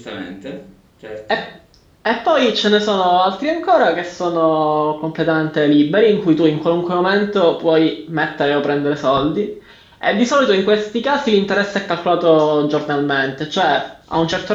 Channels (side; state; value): both; identical; correlation 1.00